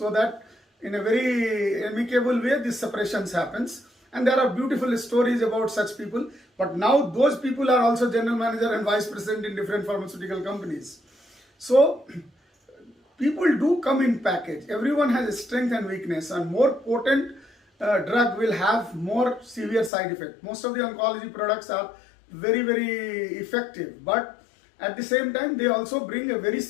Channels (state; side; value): drops out; right; at 19.9 s